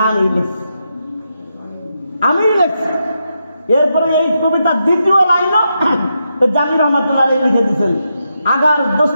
আমি লিখছি, আমি লিখছি। এরপরে এই কবিতার দ্বিতীয় লাইনও জামি রহমাতুল্লাহ আলাইহি লিখে দিয়েছেন, আগার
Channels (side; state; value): both; inverted; correlation -0.84